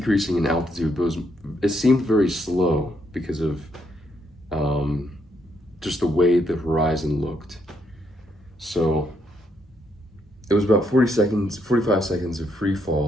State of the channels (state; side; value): normal; both; correlation 0.75